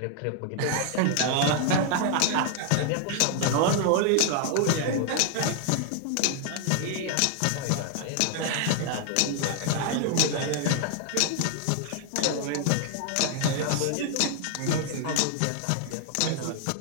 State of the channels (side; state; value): both; different; correlation 0.00